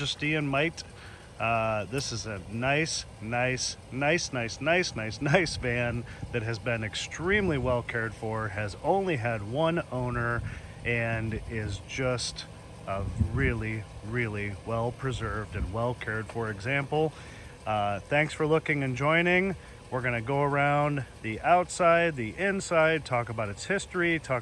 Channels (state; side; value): identical; both; correlation 1.00